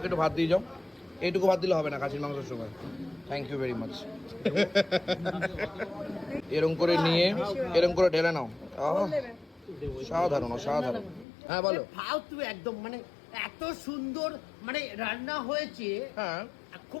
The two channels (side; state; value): right; drops out; at 11.2 s